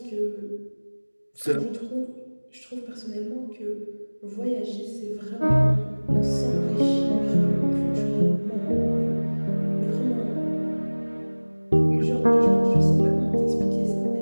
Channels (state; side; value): inverted; both; correlation -1.00